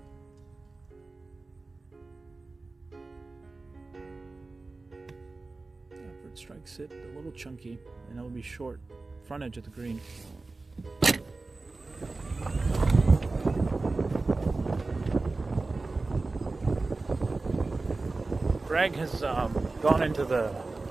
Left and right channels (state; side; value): quieter; left; 3.5 dB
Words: makes it a little chunky, and it'll be short front edge of the green. Greg has gone into the